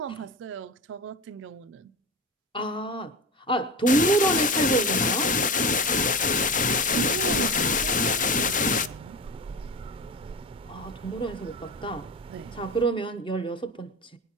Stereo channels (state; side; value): normal; both; correlation 0.26